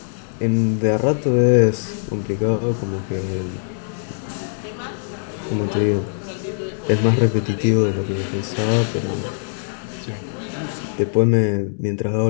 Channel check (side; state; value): right; silent; 65 dB below the other